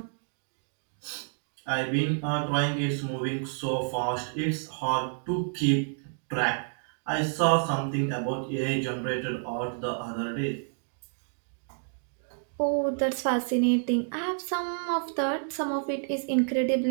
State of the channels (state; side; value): silent; left; digital silence